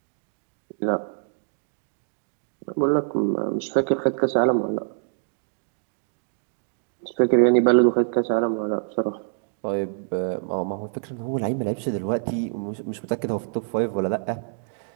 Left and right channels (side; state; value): left; silent; digital silence